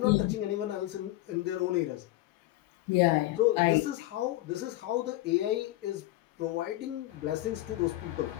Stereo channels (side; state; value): right; quieter; 16.8 dB